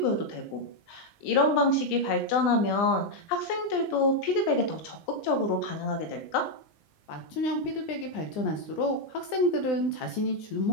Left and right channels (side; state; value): right; late; 20 ms